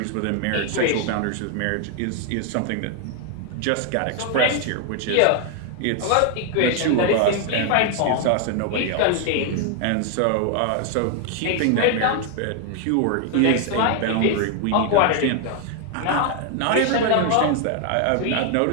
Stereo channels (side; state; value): both; different; correlation 0.00